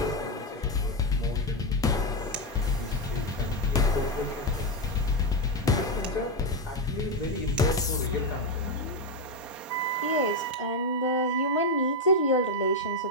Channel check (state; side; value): normal; both; correlation 0.06